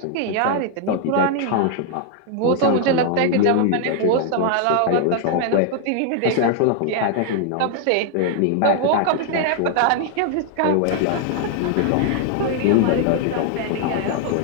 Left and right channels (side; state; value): both; different; correlation 0.00